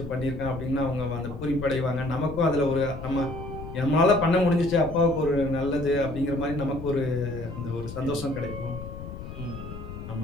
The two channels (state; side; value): noise; left; rumble, 10 dB below the sound